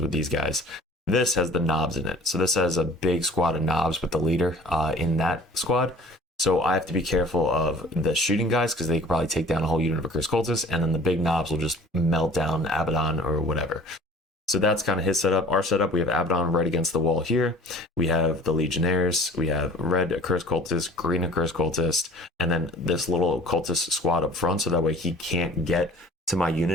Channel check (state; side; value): normal; both; correlation 0.47